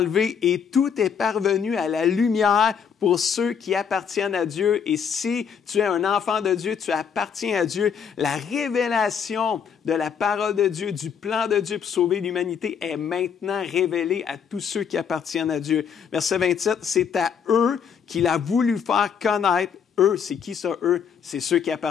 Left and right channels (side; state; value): right; quieter; 7.2 dB